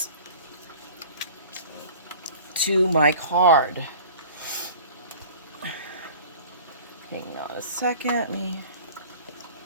to my card. Hang on a second.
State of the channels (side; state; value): both; inverted; correlation -0.43